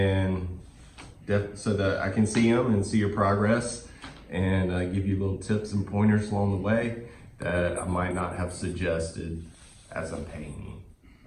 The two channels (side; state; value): both; identical; correlation 1.00